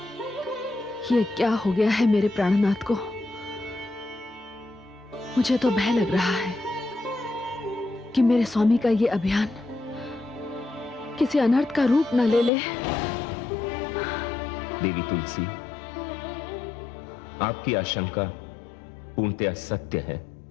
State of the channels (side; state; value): right; drops out; at 12.5 s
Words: ये क्या हो गया है मेरे प्राणनाथ को? मुझे तो भय लग रहा है कि मेरे स्वामी का ये अभियान किसी अनर्थ का रूप न ले ले। देवी तुलसी, आपकी आशंका पूर्णतया सत्य है